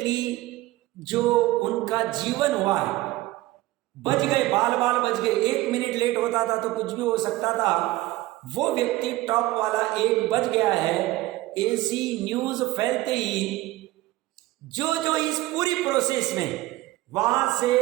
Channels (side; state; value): left; quieter; 17.9 dB